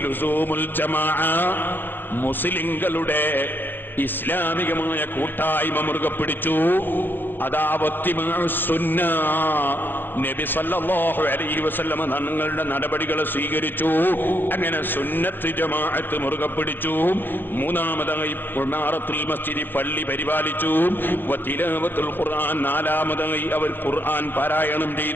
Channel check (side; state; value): right; late; 0.096 ms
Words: ലുസൂമുൽ ജമാഅ, മുസ്ലിങ്ങളുടെ ഇസ്ലാമികമായ കൂട്ടായ്മ മുറുകെ പിടിച്ചു. അതാ വത്തിബഉസ്സുന്ന, നബി സല്ലല്ലാഹു അലൈഹി വസല്ലം തങ്ങളുടെ നടപടികളെ സ്വീകരിച്ചു. അങ്ങനെ സുന്നത്ത് ജമാഅത്ത് മുറുകെ പിടിച്ചു. മൂന്നാമതായി ഇമാറത്തുൽ മസ്ജിദ്, പള്ളി പരിപാലിച്ചു. വതിലാവത്തുൽ ഖുർആൻ, നാലാമതായി അവർ ഖുർആൻ പാരായണം